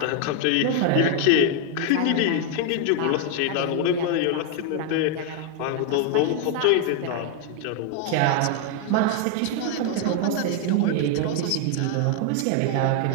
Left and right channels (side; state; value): both; different; correlation 0.01